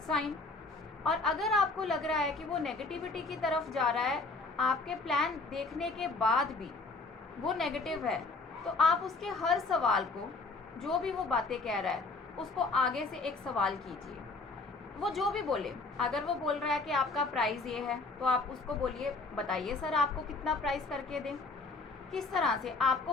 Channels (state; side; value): quieter; right; 3.7 dB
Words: साइन। और अगर आपको लग रहा है कि वो नेगेटिविटी की तरफ जा रहा है, आपके प्लान देखने के बाद भी वो नेगेटिव है, तो आप उसके हर सवाल को, जो भी वो बातें कह रहा है, उसको आगे से एक सवाल कीजिए। वो जो भी बोले, अगर वो बोल रहा है कि आपका प्राइस ये है तो आप उसको बोलिए, बताइए सर आपको कितना प्राइस करके दें। किस तरह से आपको